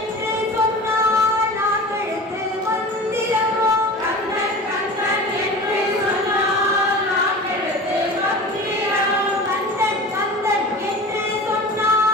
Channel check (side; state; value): both; normal; correlation 0.35